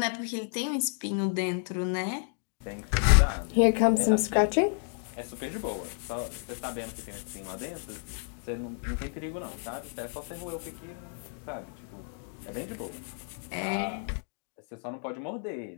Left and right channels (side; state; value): right; silent; 57 dB below the other